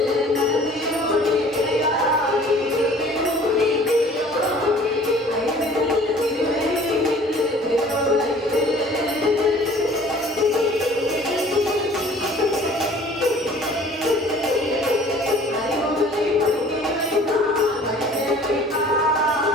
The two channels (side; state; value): both; normal; correlation 0.50